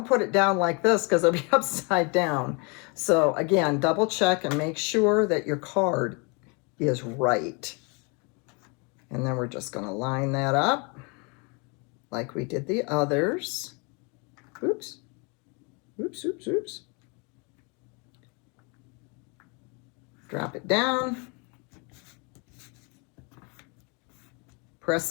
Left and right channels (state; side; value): quieter; right; 32.2 dB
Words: put it down like this because it'll be upside down. So again, double check and make sure that your card is right. And then we're just going to line that up like we did the others. Oops. Oops, oops, oops. Drop it down. Press